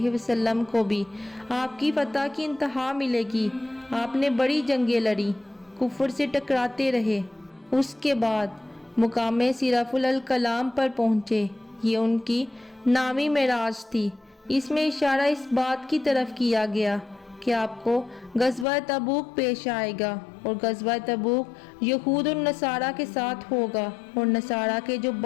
وسلم کو بھی آپ کی فتح کی انتہا ملے گی۔ آپ نے بڑی جنگیں لڑی، کفر سے ٹکراتے رہے۔ اس کے بعد مقام صرف الکلام پر پہنچے، یہ ان کی 9ویں معراج تھی۔ اس میں اشارہ اس بات کی طرف کیا گیا کہ آپ کو غزوہ تبوک پیش آئے گا، اور غزوہ تبوک یہود اور نصارہ کے ساتھ ہوگا، اور نصارہ کے جو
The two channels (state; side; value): drops out; right; at 18.7 s